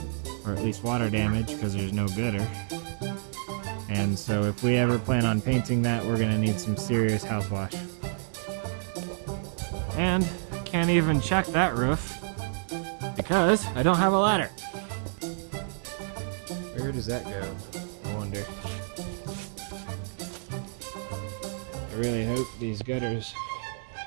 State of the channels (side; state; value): left; silent; digital silence